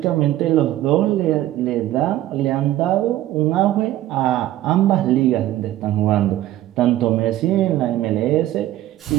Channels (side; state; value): left; quieter; 14.2 dB